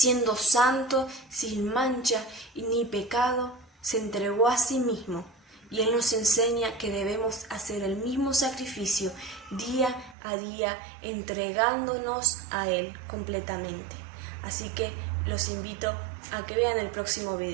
santo, sin mancha y ni pecado, se entregó a sí mismo. Y Él nos enseña que debemos hacer el mismo sacrificio día a día, entregándonos a Él completamente. Así que los invito a que vean el próximo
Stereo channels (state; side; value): drops out; left; at 10.2 s